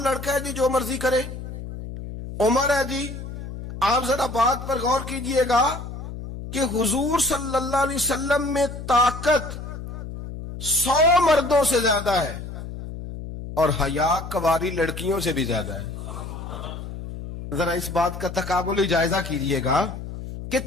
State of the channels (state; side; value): noise; left; hum, 9 dB below the sound